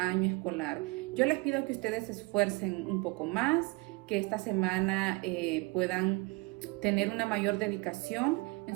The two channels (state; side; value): quieter; left; 25.2 dB